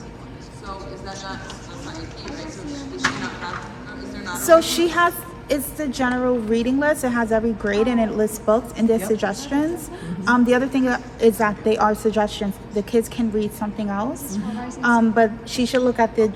So she has, it's the general reading list. It has every grade and it lists books and there's suggestions. The other thing is that they are suggestions. The kids can read something else. But she should look at the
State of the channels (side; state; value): both; identical; correlation 1.00